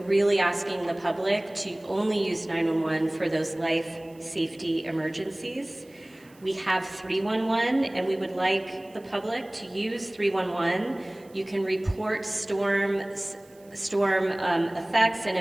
asking the public to only use 911 for those life safety emergencies. We have 311, and we would like the public to use 311. You can report storm effects and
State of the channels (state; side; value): noise; right; hiss, 29 dB below the sound